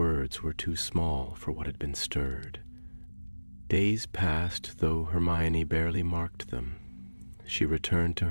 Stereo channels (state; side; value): inverted; both; correlation -1.00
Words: were too small for what had been stirred. Days passed, though Hermione barely marked them. She returned to